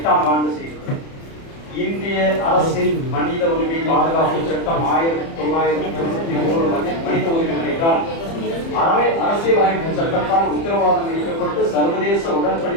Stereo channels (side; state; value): right; late; 30 ms